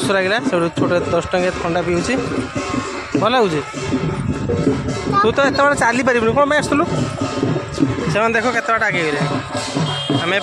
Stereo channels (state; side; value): identical; both; correlation 1.00